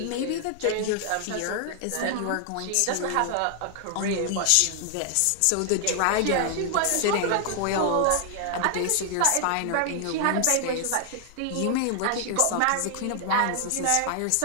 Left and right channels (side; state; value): both; different; correlation 0.00